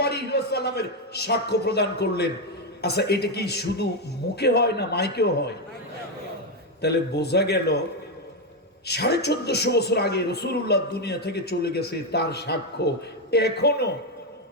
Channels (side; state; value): both; normal; correlation 0.06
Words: আলাইহি ওয়াসাল্লামের সাক্ষ্য প্রদান করলেন। আচ্ছা, এটা কি শুধু মুখে হয় না মাইকেও হয়? তাহলে বোঝা গেল 1450 বছর আগে রাসূলুল্লাহ দুনিয়া থেকে চলে গেছে, তার সাক্ষ্য এখনো